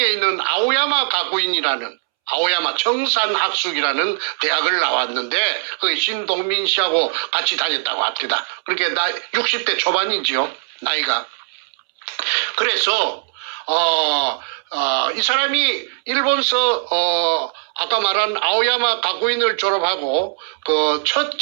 있는 아오야마 가구인이라는 아오야마 청산학숙이라는 대학을 나왔는데 그 신동민 씨하고 같이 다녔다고 합니다. 그렇게 60대 초반이지요, 나이가. 그래서 이 사람이 일본서 아까 말한 아오야마 가구인을 졸업하고 그 첫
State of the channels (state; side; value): silent; left; 66 dB below the other